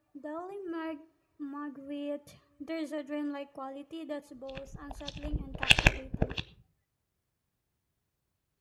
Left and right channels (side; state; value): both; identical; correlation 1.00